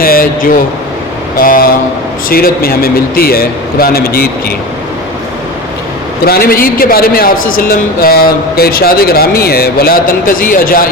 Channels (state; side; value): normal; both; correlation 0.29